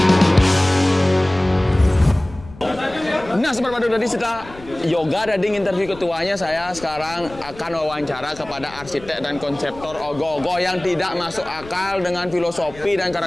Nah, seperti tadi setelah Yoga tadi interview ketuanya, saya sekarang akan wawancara kepada arsitek dan konseptor Ogoh-Ogoh yang tidak masuk akal dengan filosofi dan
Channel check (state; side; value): noise; left; rumble, 19 dB below the sound